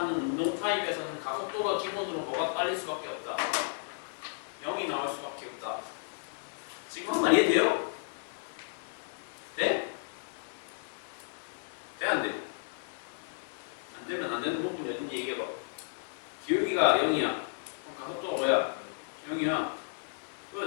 운동 타입에서는 가속도가 기본으로 뭐가 깔릴 수밖에 없다. 0이 나올 수밖에 없다. 지금 한 말 이해돼요? 네? 돼? 안 돼? 안 되면 안 되는 부분이 어딘지 얘기해봐. 기울기가 0이야. 그럼 가속도가 뭐야? 0이야.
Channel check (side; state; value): right; silent; digital silence